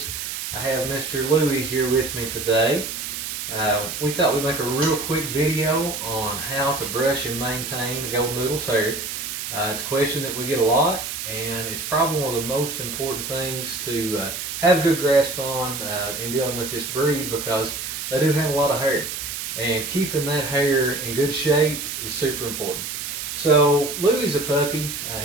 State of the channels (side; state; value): right; noise; hiss, 5 dB below the sound